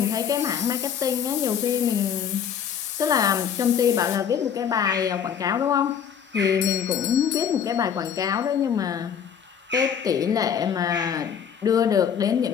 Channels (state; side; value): quieter; right; 8.0 dB